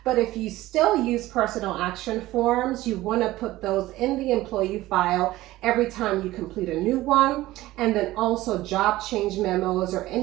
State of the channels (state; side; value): quieter; left; 16.9 dB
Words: But if you still use personnel action forms, you want to put those in the employee file every time you complete a new one. And then also job change memos or